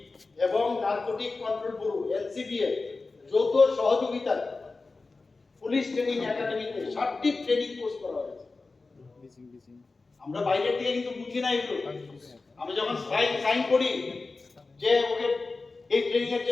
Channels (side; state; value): right; quieter; 3.8 dB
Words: এবং নার্কোটিক কন্ট্রোল ব্যুরো এনসিবিএ যৌথ সহযোগিতায় পুলিশ ট্রেনিং একাডেমিতে 60টি ট্রেনিং কোর্স করা হয়েছে। আমরা বাইরের থেকে কিন্তু বুঝি না এগুলো। আমি যখন সাইন করি যে ওকে এই ট্রেনিং এর